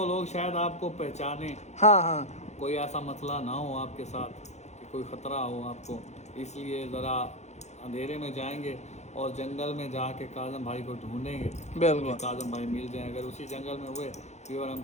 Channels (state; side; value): late; right; 0.33 ms